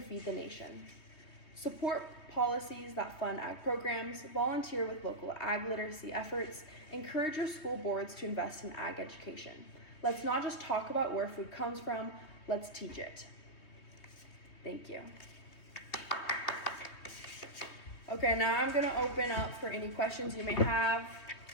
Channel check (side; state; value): right; late; 3.1 ms